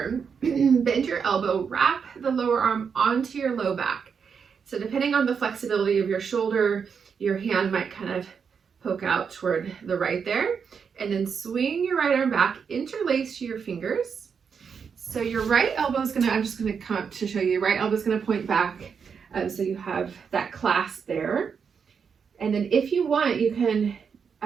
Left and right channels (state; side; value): quieter; left; 6.4 dB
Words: bend your elbow, wrap the lower arm onto your low back. So depending on the flexibility of your shoulder, your hand might kind of poke out toward the right there, and then swing your right arm back, interlace your fingers. So your right elbow is gonna, I'm just gonna come up to show you, your right elbow is gonna point back, so you have that clasp there. And then if you want, you can